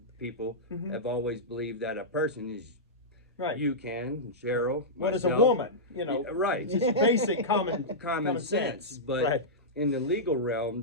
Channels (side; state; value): both; normal; correlation -0.12